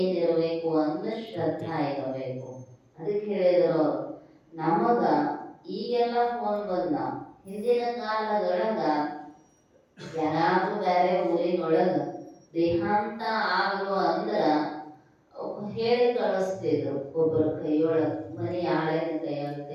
ಅಂದ್ರೆ ಶ್ರದ್ಧಾ ಇರಬೇಕು. ಅದಕ್ಕೆ ಹೇಳಿದ್ರು ನಮಗ ಈಗೆಲ್ಲ ಫೋನ್ ಬಂದ, ಹಿಂದಿನ ಕಾಲದೊಳಗ ಯಾರಾದ್ರೂ ಬೇರೆ ಊರಿನೊಳಗ ದೇಹಾಂತ ಆಗಲು ಅಂದ್ರ ಹೇಳಿ ಕಳಿಸ್ತಿದ್ರು. ಒಬ್ಬರ ಕೈಯೊಳಗ, ಮನಿ ಆಳಿನ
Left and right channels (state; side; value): identical; both; correlation 1.00